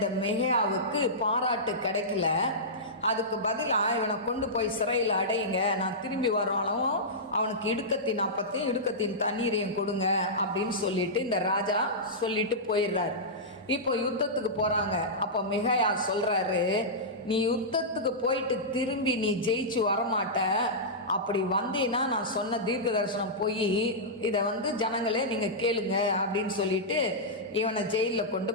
மிகையாவுக்கு பாராட்டு கிடைக்கல. அதுக்கு பதிலாக இவனை கொண்டு போய் சிறையில் அடையுங்க, நான் திரும்பி வராலும் அவனுக்கு இடுக்கத்தின் அப்பத்தையும் இடுக்கத்தின் தண்ணீரையும் கொடுங்க அப்படின்னு சொல்லிட்டு இந்த ராஜா சொல்லிட்டு போயிடுறாரு. இப்போ யுத்தத்துக்கு போகிறாங்க. அப்போ மிகையா சொல்கிறாரு, நீ யுத்தத்துக்கு போயிட்டு திரும்பி நீ ஜெயிச்சு வரமாட்ட, அப்படி வந்தீன்னா நான் சொன்ன தீர்க்க தரிசனம் போய் இதை வந்து ஜனங்களே நீங்கள் கேளுங்க அப்படின்னு சொல்லிட்டு இவனை ஜெயிலில் கொண்டு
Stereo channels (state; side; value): normal; both; correlation -0.13